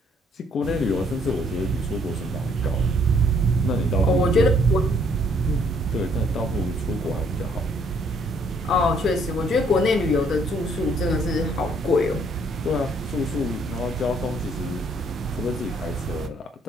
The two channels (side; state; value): both; normal; correlation 0.65